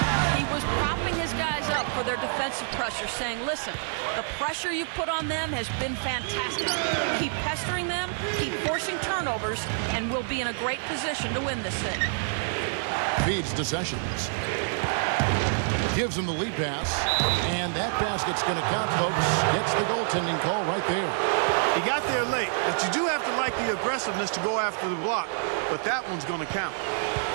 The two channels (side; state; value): left; silent; digital silence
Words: He was propping his guys up for their defensive pressure, saying, listen, the pressure you put on them has been fantastic. Keep pestering them, keep forcing turnovers, and we'll be in a great position to win this thing. Feeds to Sessions. Gives him the lead pass, and that basket's going to count, folks. Gets the goaltending call right there. He got there late, but you do have to like the aggressiveness to go after the block, but that one's going to count.